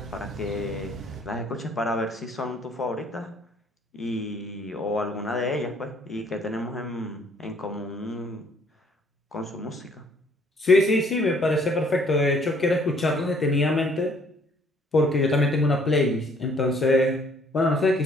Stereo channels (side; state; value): both; normal; correlation 0.62